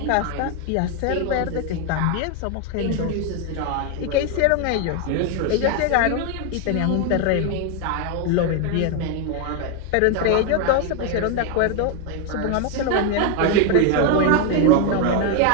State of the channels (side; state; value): both; different; correlation 0.01